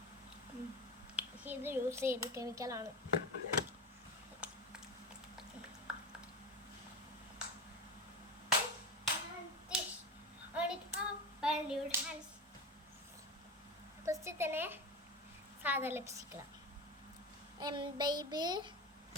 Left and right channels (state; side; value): normal; both; correlation 0.23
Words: ഇത് യൂസ് ചെയ്ത് കെമിക്കലാണ്. ഫസ്റ്റ് തന്നെ സാധാ ലിപ്സ്റ്റിക്